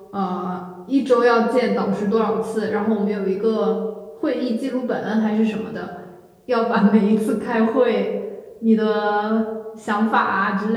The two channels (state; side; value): identical; both; correlation 1.00